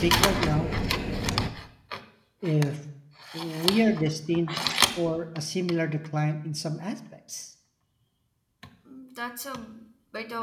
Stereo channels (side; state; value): both; identical; correlation 1.00